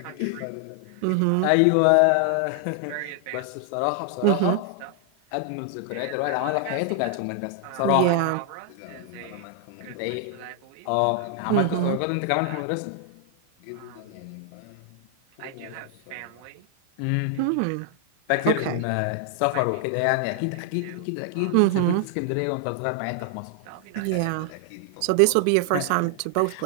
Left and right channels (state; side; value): different; both; correlation 0.00